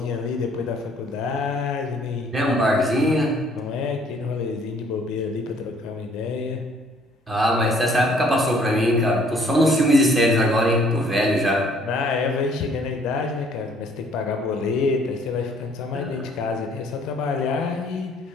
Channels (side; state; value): both; normal; correlation 0.60